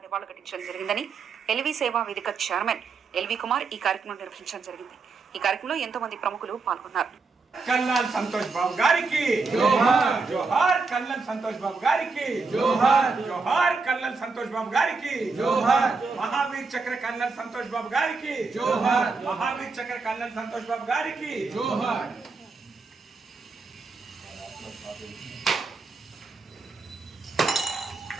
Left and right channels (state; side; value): quieter; left; 4.3 dB